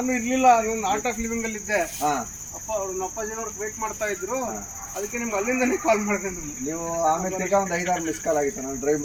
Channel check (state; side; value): identical; both; correlation 1.00